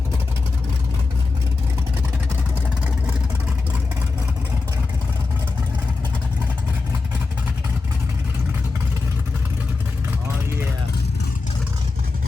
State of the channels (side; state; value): right; quieter; 4.0 dB